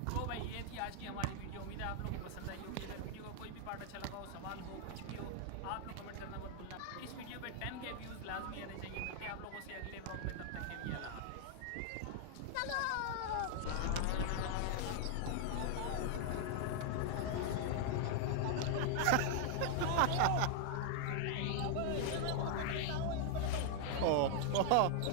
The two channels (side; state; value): both; different; correlation 0.00